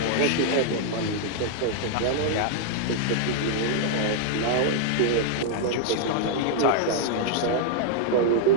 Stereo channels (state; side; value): different; both; correlation 0.00